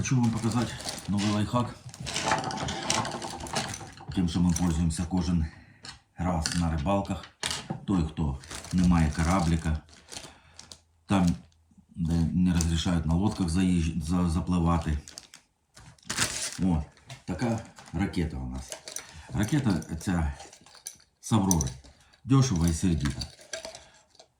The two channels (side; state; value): both; identical; correlation 1.00